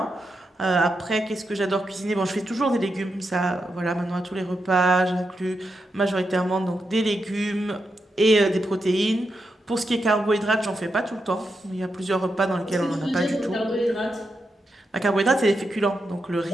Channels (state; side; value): normal; both; correlation 0.85